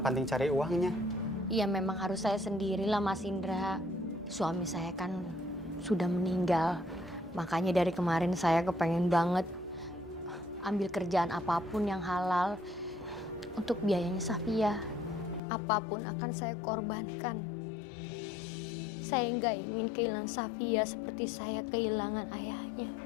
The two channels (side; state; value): right; drops out; at 15.4 s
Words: cari uangnya? Iya, memang harus saya sendirilah, Mas Indra. Suami saya kan sudah meninggal. Makanya dari kemarin saya kepengen banget ambil kerjaan apapun yang halal untuk biayanya Safia. Apapun akan saya korbankan. Saya nggak ingin kehilangan Safia seperti saya kehilangan ayahnya.